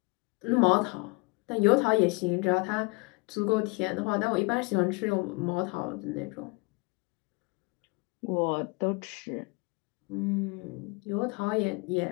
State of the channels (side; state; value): right; quieter; 28.0 dB